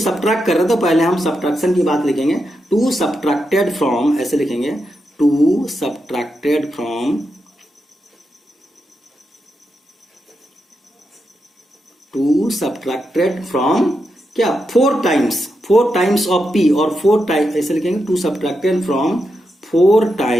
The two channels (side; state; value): both; normal; correlation 0.86